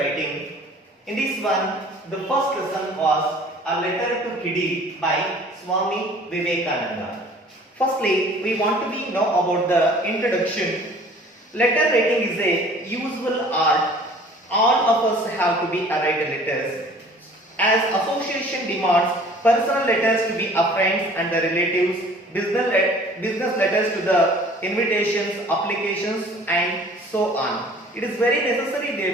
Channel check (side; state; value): both; normal; correlation 0.50